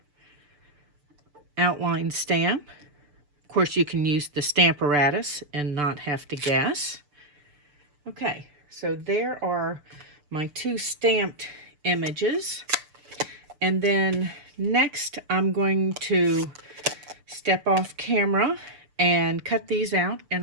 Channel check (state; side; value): late; left; 6.8 ms